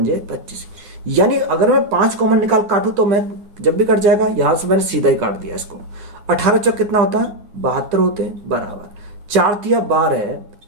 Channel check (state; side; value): late; left; 9.6 ms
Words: 25। यानी अगर मैं 5 कॉमन निकाल काटूं तो मैं जब भी कट जाएगा, यहां से मैंने सीधा ही काट दिया इसको। 18 चौक कितना होता है, 72 होते हैं बराबर 4 तिया 12